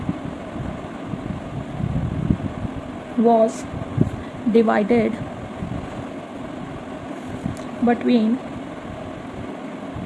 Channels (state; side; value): identical; both; correlation 1.00